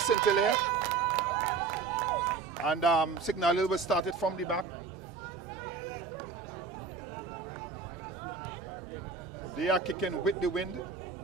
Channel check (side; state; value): left; quieter; 5.0 dB